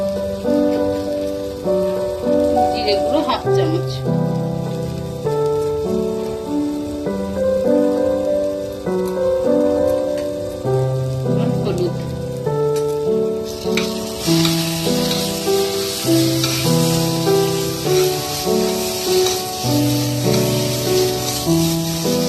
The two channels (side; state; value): both; identical; correlation 1.00